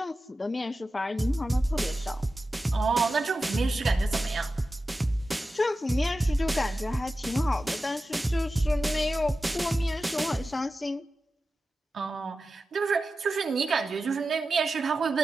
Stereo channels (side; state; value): both; normal; correlation 0.93